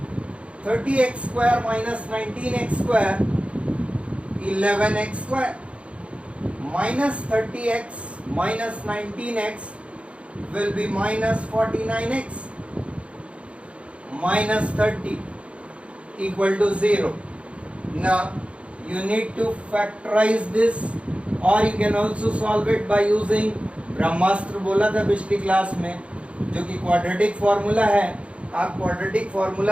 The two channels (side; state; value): left; late; 0.061 ms